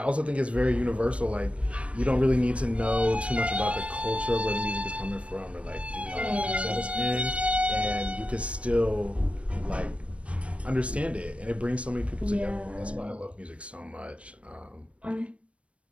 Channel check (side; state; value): left; late; 0.062 ms